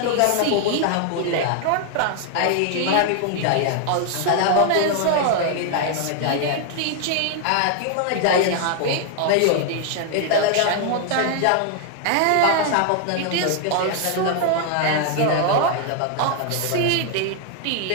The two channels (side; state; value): both; different; correlation 0.00